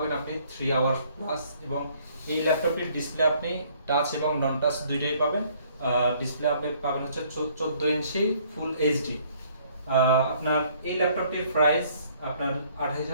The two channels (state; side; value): inverted; both; correlation -0.61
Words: আপনি 3 আওয়ার প্লাস, এবং এই ল্যাপটপটির ডিসপ্লে আপনি টাচ এবং নন টাচ দুইটাই পাবেন। ডিসপ্লে আপনি পাবেন হচ্ছে 14 ইঞ্চি ফুল এইচডি। আপনার এই ল্যাপটপটির প্রাইস আপনার